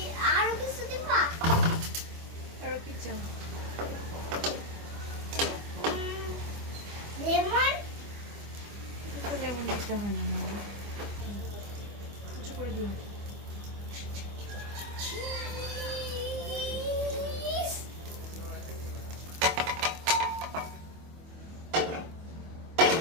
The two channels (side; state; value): left; late; 25 ms